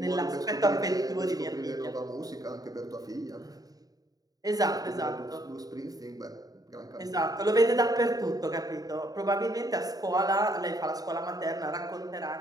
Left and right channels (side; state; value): left; late; 0.18 ms